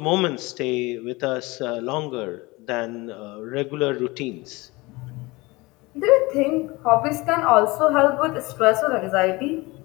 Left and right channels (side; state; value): right; quieter; 22.9 dB